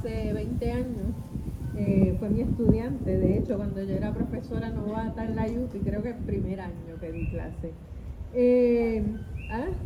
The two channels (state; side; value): identical; both; correlation 1.00